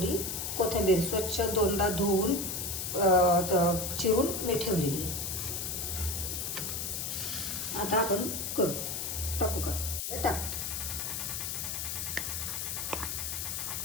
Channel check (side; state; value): left; noise; hiss, 3 dB below the sound